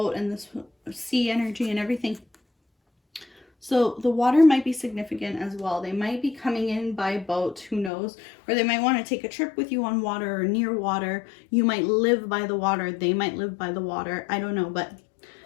and this sea energy and everything. So the water might be significant as well. They might be coming in by boat, who knows? Or they might want to take a trip with you on water or near water. You might live by the water. They might live by the water. I don't know, but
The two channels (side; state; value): right; drops out; at 7.9 s